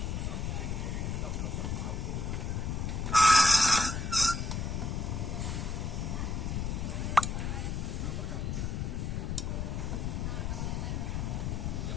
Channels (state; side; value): noise; left; rumble, 1 dB below the sound